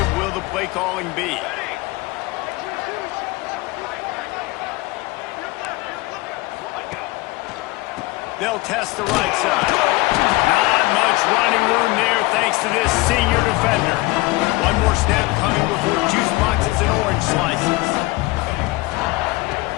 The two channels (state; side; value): quieter; right; 21.7 dB